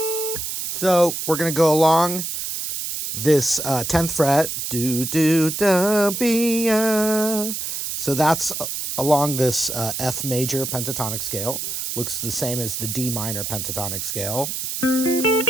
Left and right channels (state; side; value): noise; right; hiss, 4 dB below the sound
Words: So we're going to go along this 10th fret. Do, do, da, be, So that's along this F major pentatonic scale. Looks the same as the D minor pentatonic scale.